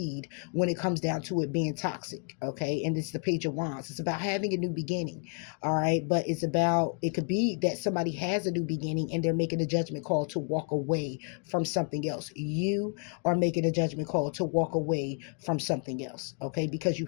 when it comes down to it being toxic. Okay, and it's the Page of Wands. It's about having a new beginning. All right, but it could be that somebody has a new beginning and they're making a judgment call to walk away from something else. You are making a judgment call to walk away from something else. Okay, because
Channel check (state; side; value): quieter; right; 38.1 dB